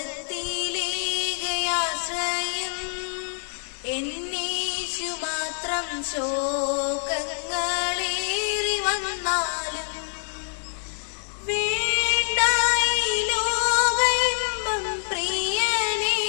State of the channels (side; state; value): right; silent; digital silence